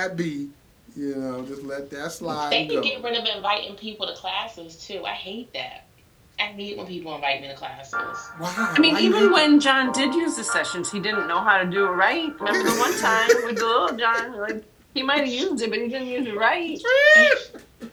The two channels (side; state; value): both; identical; correlation 1.00